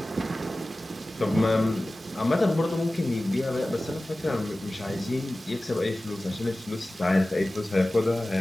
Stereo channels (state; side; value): normal; both; correlation 0.97